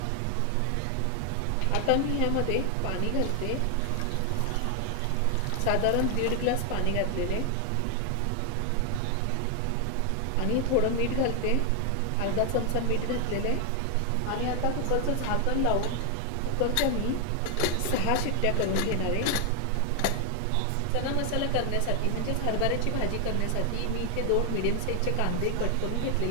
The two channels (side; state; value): both; different; correlation 0.00